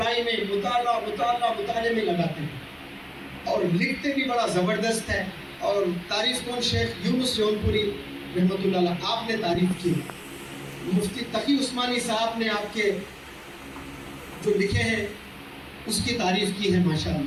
میں مطالعے میں لگاتے ہیں، اور لکھتے بھی بڑا زبردست ہے۔ اور تعریف کون؟ شیخ یونس جون پوری رحمۃ اللہ علیہ، آپ نے تعریف کی، مفتی تقی عثمانی صاحب نے آپ کے جو لکھے ہیں اس کی تعریف کی ہے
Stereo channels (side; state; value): both; identical; correlation 1.00